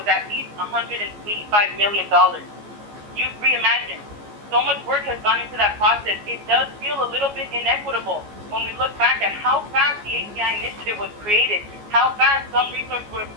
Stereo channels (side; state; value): left; late; 14 ms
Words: at least $185 million. Youth Reimagine. So much work has gone into that process. It does feel a little bit inequitable when we look back at how fast the ACI initiative was created, how fast some resources were